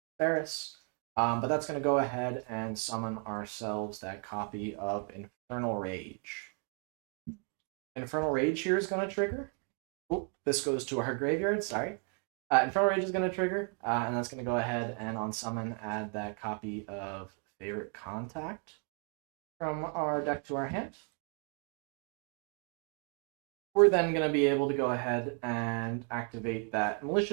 Faris. But that's going to go ahead and summon ourselves that copy of Infernal Rage. Infernal Rage here is going to trigger. Oh, this goes to our graveyard, sorry. Infernal Rage is going to trigger, and that's going to go ahead and on summon add that copy of Favorite Contact from our deck to our hand. We're then going to be able to go ahead and activate that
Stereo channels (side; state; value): left; quieter; 38.9 dB